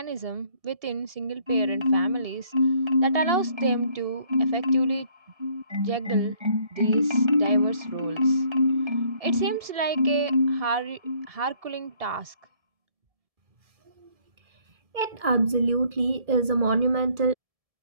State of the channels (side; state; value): left; late; 1.7 ms